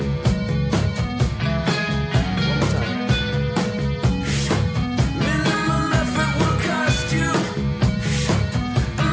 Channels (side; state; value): both; identical; correlation 1.00